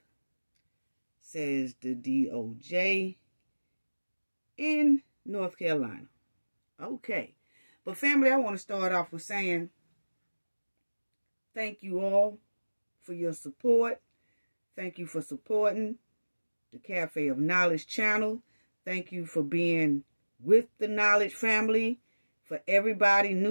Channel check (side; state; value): both; inverted; correlation -1.00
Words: says the DOJ in North Carolina. Okay. But family, I want to start off with saying thank you all for your support. Thank you for supporting the Cafe of Knowledge channel. Thank you for being with the Knowledge family. For everybody,